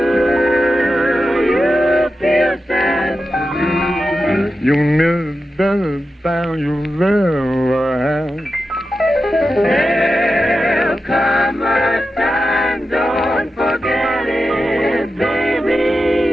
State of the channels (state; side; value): normal; both; correlation 0.91